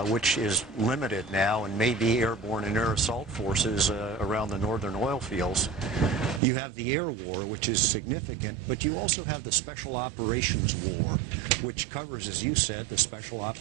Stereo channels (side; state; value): left; drops out; at 6.4 s